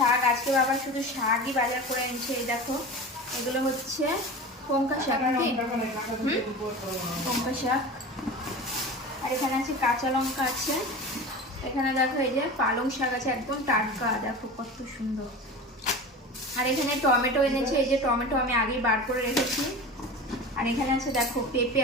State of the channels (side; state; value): both; normal; correlation 0.32